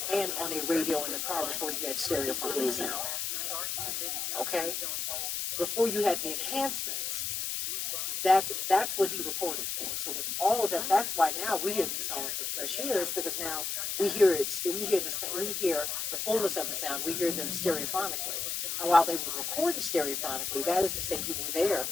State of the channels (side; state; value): left; noise; hiss, 2 dB below the sound